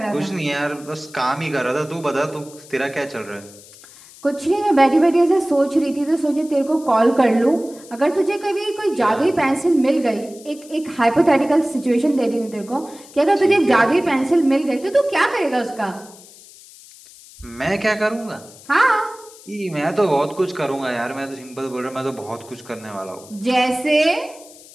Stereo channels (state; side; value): noise; left; hiss, 21 dB below the sound